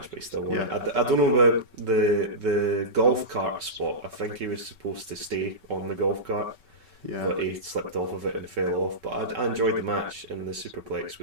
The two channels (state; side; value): late; left; 5.3 ms